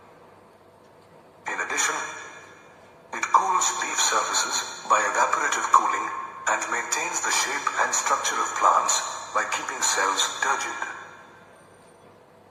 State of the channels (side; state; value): both; identical; correlation 1.00